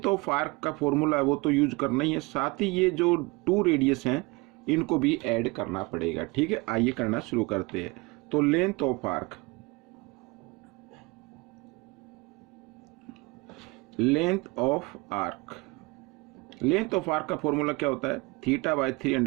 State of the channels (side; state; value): left; quieter; 25.8 dB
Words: ऑफ आर्क का फॉर्मूला है वो तो यूज करना ही है, साथ ही ये जो 2 रेडियस हैं इनको भी ऐड करना पड़ेगा। ठीक है, आइए करना शुरू करते हैं। तो length of arc, length of arc, length of arc का फॉर्मूला क्या होता है,